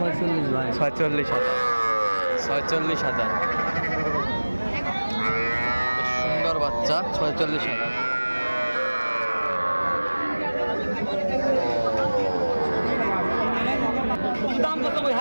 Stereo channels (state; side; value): inverted; both; correlation -1.00